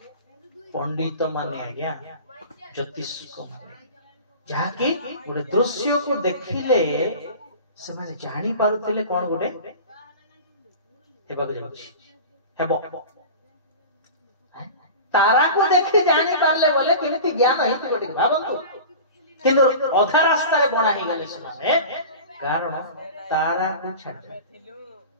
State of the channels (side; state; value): both; inverted; correlation -0.35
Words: पंडित माने आज्ञा ज्योतिष को माने जहा कि गोटे दृश्य को देखिले से माने जानि पारुतिले कोन गोटे हेबाक जाउछि हेबो तारा को देखि जानि पारले बोले केमिति ज्ञान हेति गोटे भाबंतु किंतु अधा रास्ता रे बणा हे गेले सुनाने कारण तारा को छाड़